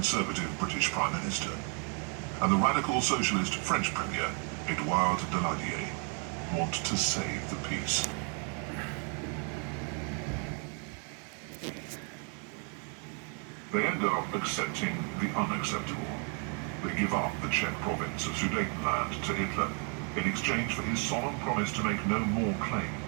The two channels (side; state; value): left; quieter; 39.8 dB